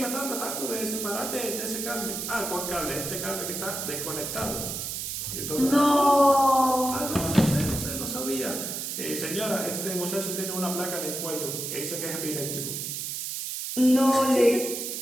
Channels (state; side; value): noise; right; hiss, 4 dB below the sound